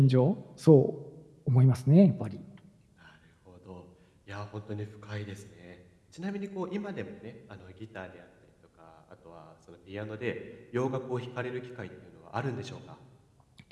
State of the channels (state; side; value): identical; both; correlation 1.00